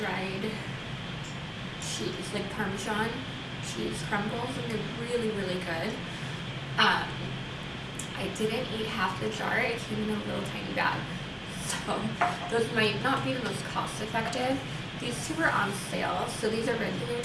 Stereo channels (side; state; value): both; identical; correlation 1.00